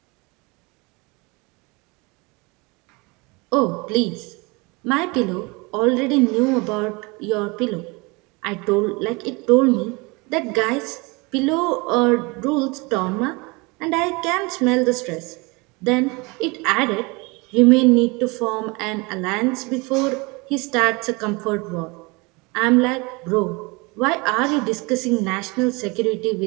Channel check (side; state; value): left; quieter; 26.7 dB